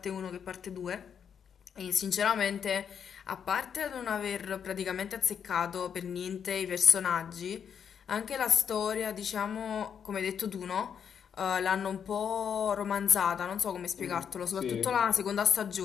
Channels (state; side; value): quieter; right; 7.7 dB